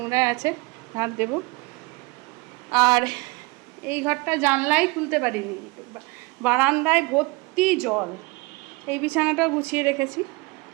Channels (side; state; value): left; quieter; 25.8 dB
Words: আছে, ঝাড় দেব। আর এই ঘরটা জানলাই খুলতে পারিনি, বারান্দায় ভর্তি জল। এই বিছানাটাও গুছিয়ে রেখেছি।